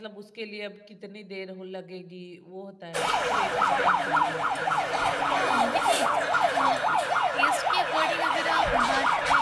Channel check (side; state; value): both; identical; correlation 1.00